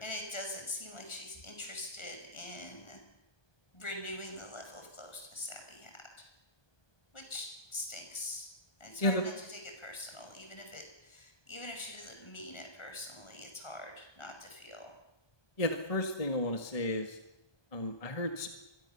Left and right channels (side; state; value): right; late; 1.4 ms